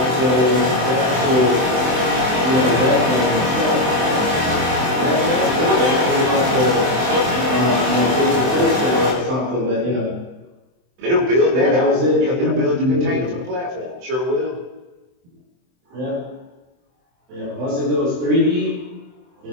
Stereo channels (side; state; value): left; late; 23 ms